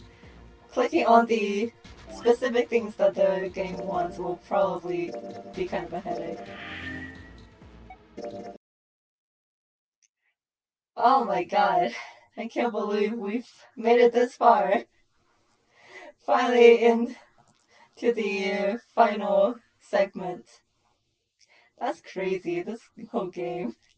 clicking on the specific things that the game wants will probably be kind of a headache. Oh my god, I can't believe we've made it this far. Finally into the final segment. That's crazy, this whole game.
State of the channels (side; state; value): both; identical; correlation 1.00